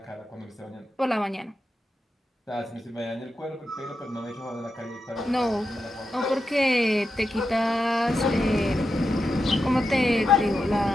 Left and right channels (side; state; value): both; normal; correlation 0.88